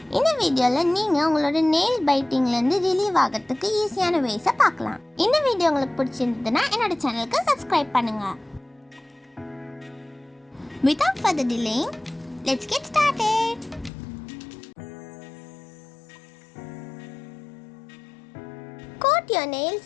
இந்த வீடியோல நீங்க உங்களோட nail biting ல இருந்து ரிலீவ் ஆகிறதுக்கு ஈஸியான ways பார்க்கலாம். இந்த வீடியோ உங்களுக்கு பிடிச்சிருந்ததுன்னா என்னோட சேனலுக்கு subscribe பண்ணுங்க. Without further delay, let's get started. Coat your nails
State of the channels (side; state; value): right; drops out; at 13.9 s